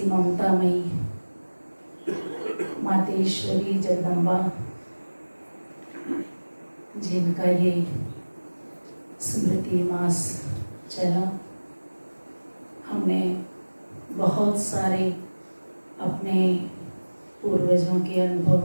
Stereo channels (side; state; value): both; inverted; correlation -1.00